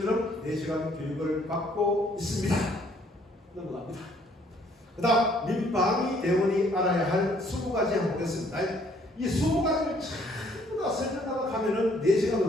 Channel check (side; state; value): both; normal; correlation 0.63